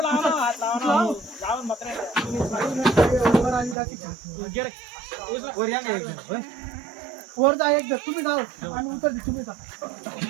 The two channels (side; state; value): left; drops out; at 3.8 s